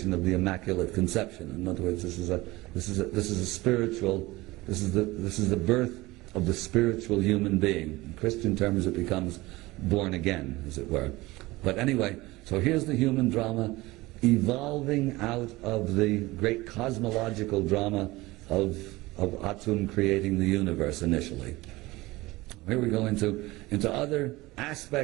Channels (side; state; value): left; quieter; 20.2 dB